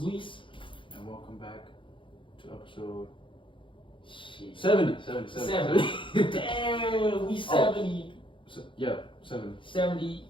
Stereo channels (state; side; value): late; right; 0.25 ms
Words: Luis. And welcome back to episode Shit. 70. 70. Damn, we 70. Yeah, 70. 70